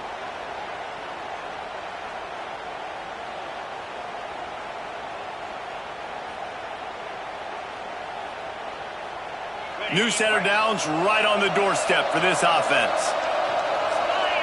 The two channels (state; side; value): identical; both; correlation 1.00